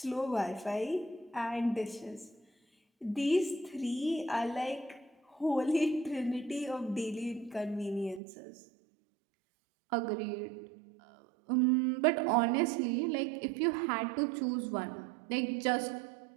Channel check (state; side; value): drops out; left; at 8.2 s